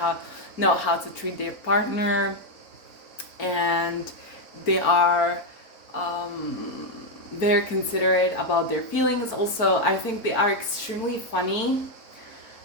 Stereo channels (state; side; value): late; right; 4.5 ms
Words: know how to treat their partner, and they are very considerate about their feelings. Also, I think they are extremely funny